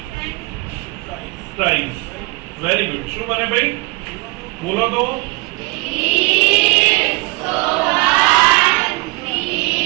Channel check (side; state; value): left; quieter; 26.5 dB